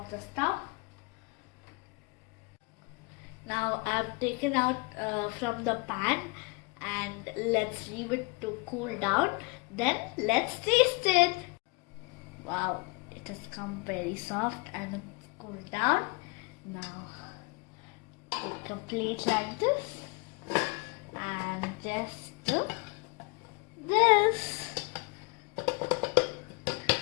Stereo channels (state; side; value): quieter; right; 28.1 dB